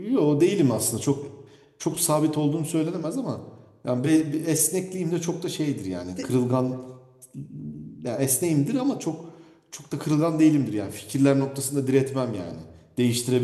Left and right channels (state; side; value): identical; both; correlation 1.00